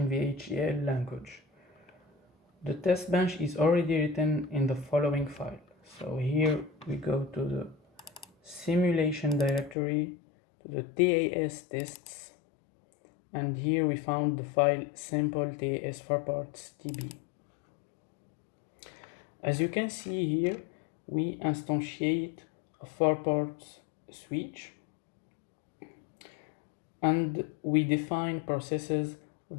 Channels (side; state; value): right; drops out; at 9.8 s